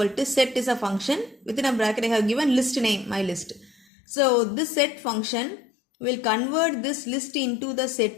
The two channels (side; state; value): right; drops out; at 3.9 s